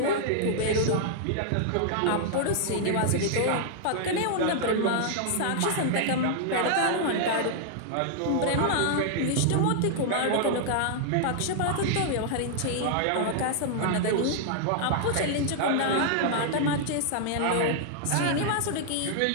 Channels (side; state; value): both; different; correlation -0.01